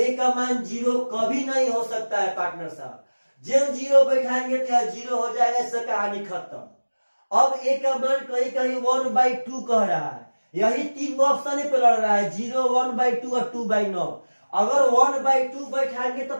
का मान 0 कभी नहीं हो सकता है पार्टनर साहब। जब 0 बैठाएंगे तो यह 0 हो जाएगा, इससे कहानी खत्म। अब ए का मान कहीं कहीं 1/2 कह रहा है, यही 3 ऑप्शन पे लड़ रहा है, 0 1/2 और 2/9। अगर 1/2 बैठाएंगे तो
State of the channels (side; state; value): both; inverted; correlation -1.00